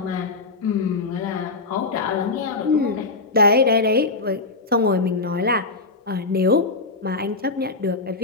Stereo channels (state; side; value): quieter; right; 3.6 dB